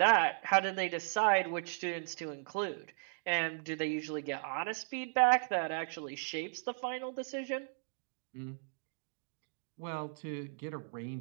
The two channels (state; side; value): silent; left; digital silence